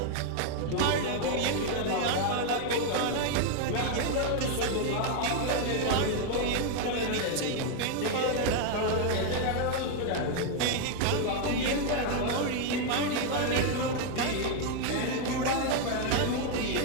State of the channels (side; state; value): both; different; correlation 0.01